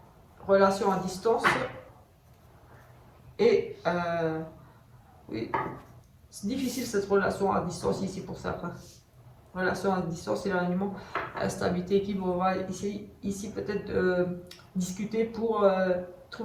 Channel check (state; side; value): identical; both; correlation 1.00